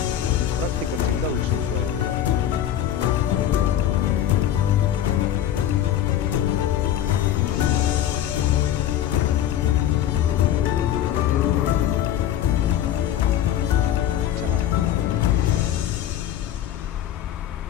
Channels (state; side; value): quieter; right; 11.0 dB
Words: Практика всегда лучше усваивается.